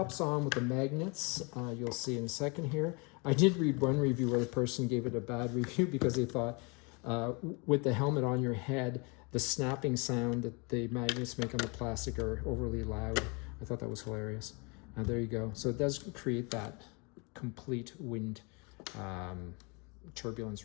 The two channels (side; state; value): right; quieter; 30.8 dB